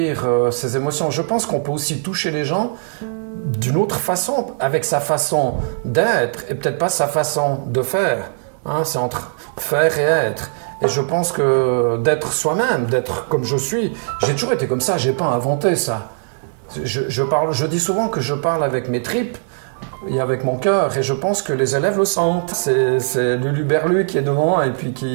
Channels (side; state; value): left; silent; 66 dB below the other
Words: ces émotions. Je pense qu'on peut aussi toucher les gens d'une autre façon, avec sa façon d'être et peut-être pas sa façon de faire. Hein, c'est entre faire et être. Et je pense que d'être soi-même, d'être comme je suis, j'ai toujours été comme ça, j'ai pas inventé ça. Je dis souvent que je parle avec mes tripes et avec mon cœur, et je pense que les élèves le sentent. C'est Lulu Berlu qui est devant et puis